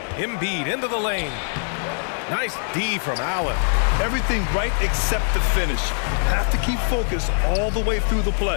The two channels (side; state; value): right; silent; 56 dB below the other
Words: Embiid into the lane. Nice D from Allen. Everything right except the finish. Have to keep focus all the way through the